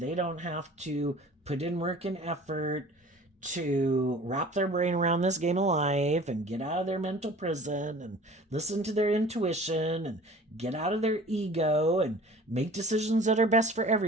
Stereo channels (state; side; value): normal; both; correlation 0.45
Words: don't have to put in work and effort to wrap their brain around this game of life and get out of their mental prison and listen to their intuition and get out of their ego and make decisions that are best for